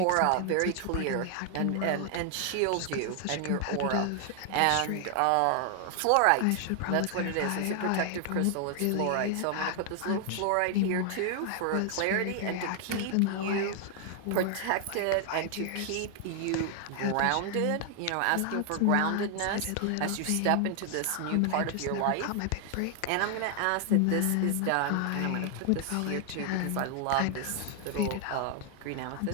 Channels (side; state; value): both; different; correlation 0.00